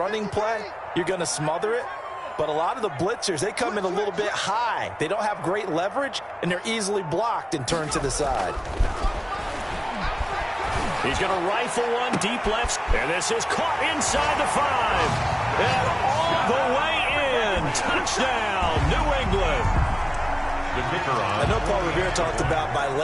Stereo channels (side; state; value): both; identical; correlation 1.00